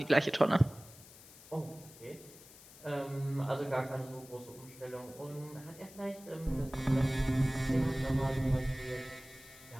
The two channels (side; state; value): left; noise; hiss, 20 dB below the sound